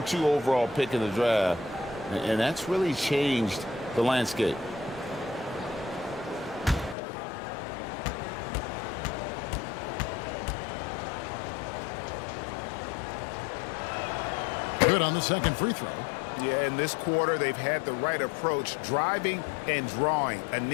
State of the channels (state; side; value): drops out; right; at 7.0 s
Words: overall pick in the draft, and that's really changed the landscape. Good on the second free throw. Yeah, in this quarter, they've had the right approach, driving and drawing,